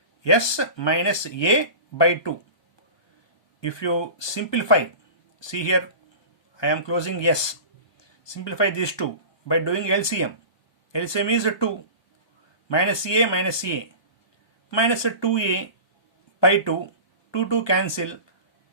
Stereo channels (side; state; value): right; late; 1.2 ms